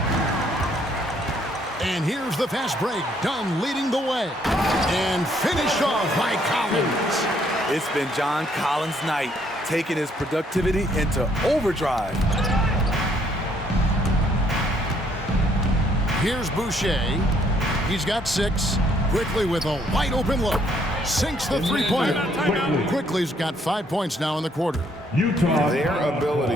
And here's the fast break. Dunn leading the way. And finished off by Collins. It's been John Collins' night, taking his productivity into overdrive. Here's Boucher. He's got 6. Quickly with a wide open look. Sinks the three-pointer. Quickly's got 5 points now in the quarter. Utah. Their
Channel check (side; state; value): both; normal; correlation 0.67